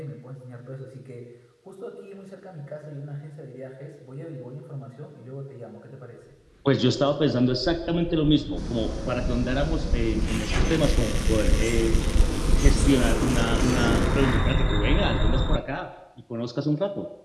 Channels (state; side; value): identical; both; correlation 1.00